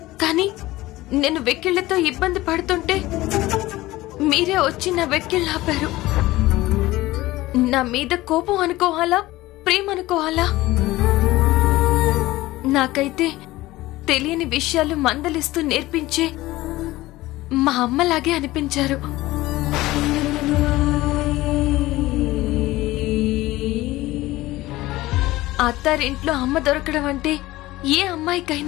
కానీ నేను వెక్కిళ్లతో ఇబ్బంది పడుతుంటే మీరే వచ్చి నా వెక్కిళ్ళు ఆపారు. నా మీద కోపం అనుకోవాలా, ప్రేమ అనుకోవాలా? నాకైతే తెలియని విషయాలు మందలిస్తూ నేర్పించే మా అమ్మలాగే అనిపించారు. అత్తారింట్లో అమ్మ దొరకడం అంటే ఏ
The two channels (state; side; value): quieter; right; 18.0 dB